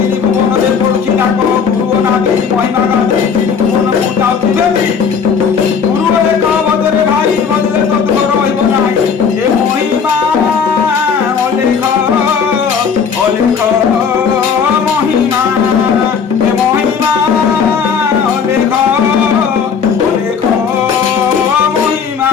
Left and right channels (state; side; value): quieter; right; 6.4 dB